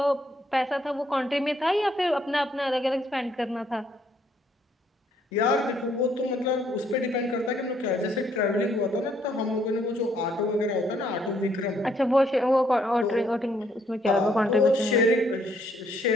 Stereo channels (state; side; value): normal; both; correlation 0.69